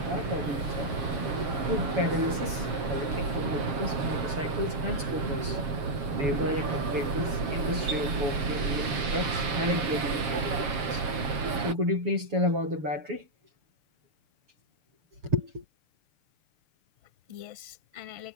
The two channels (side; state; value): left; late; 7.4 ms